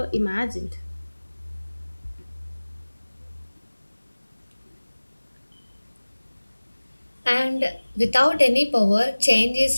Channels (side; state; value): both; inverted; correlation -1.00